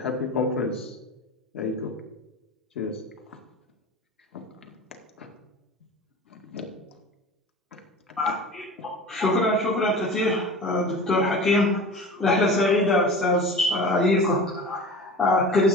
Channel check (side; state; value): both; normal; correlation 0.36